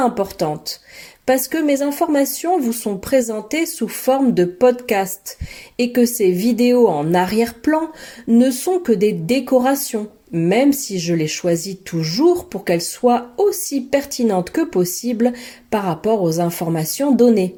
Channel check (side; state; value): both; identical; correlation 1.00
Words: parce que mes informations vous sont présentées sous forme de podcast, et que ces vidéos en arrière-plan ne sont que des décorations, même si je les choisis toujours pour qu'elles soient aussi pertinentes que possible par rapport aux informations données.